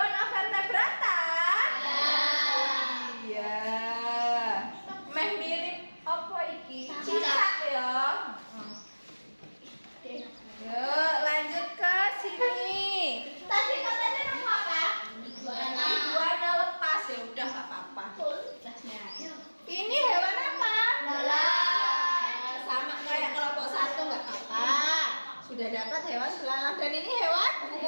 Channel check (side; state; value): both; inverted; correlation -1.00